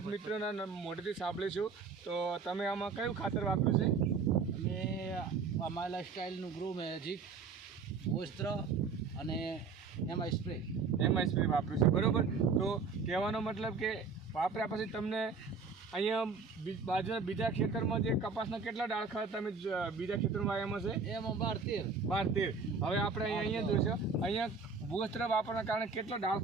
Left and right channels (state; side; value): quieter; left; 4.9 dB